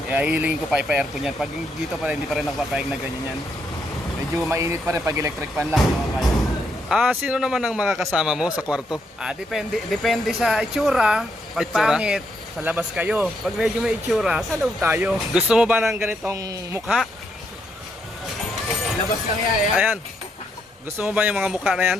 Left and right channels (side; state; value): both; normal; correlation 0.77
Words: Hihilingin ko pa ipa-aircon yan. Pag dito pa rin, hindi pa rin nakapapayag na ganyan yan. Medyo mainit pa rin pag electric fan lang. Sino naman ang makakasama mo sa kwarto? Depende sa itsura. Pag Itsura? pangit, sa labas kayo. Pag medyo may itsura, sa loob tayo. Gusto mo ba ng ganitong mukha? Labas lang yan. Ayan. Gusto mo ba yung mga mukha na yan?